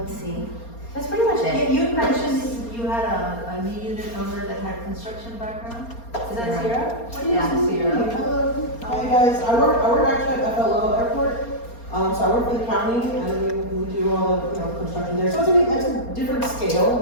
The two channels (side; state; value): right; late; 4.3 ms